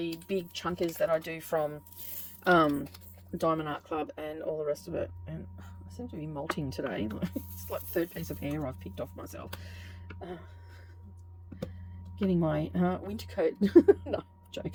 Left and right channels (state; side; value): identical; both; correlation 1.00